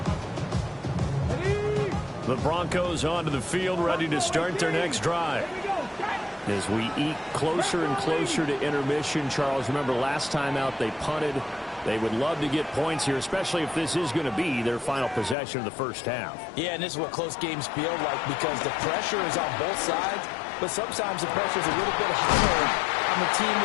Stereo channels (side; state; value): right; drops out; at 15.4 s